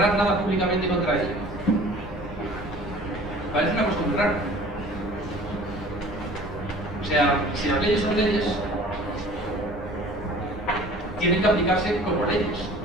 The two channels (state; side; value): normal; both; correlation 0.47